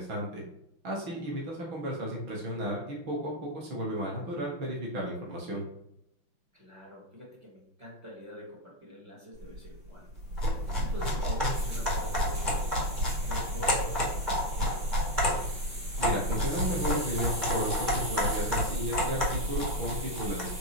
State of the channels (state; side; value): late; left; 5.9 ms